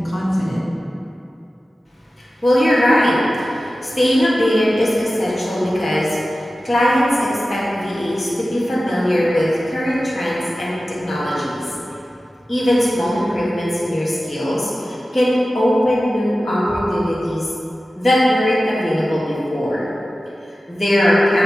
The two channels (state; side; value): normal; both; correlation 0.95